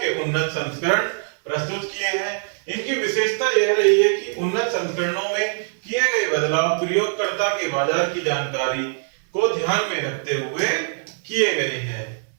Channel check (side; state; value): left; silent; digital silence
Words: उन्नत संस्करण प्रस्तुत किए हैं। इनकी विशेषता यह रही है कि उन्नत संस्करणों में किए गए बदलाव प्रयोगकर्ता के बाजार की जानकारी को ध्यान में रखते हुए किए गए हैं।